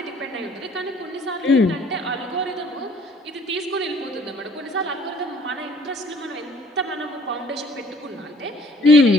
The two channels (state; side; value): normal; both; correlation 0.56